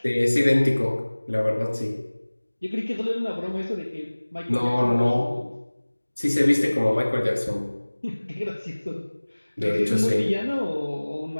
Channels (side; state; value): both; inverted; correlation -1.00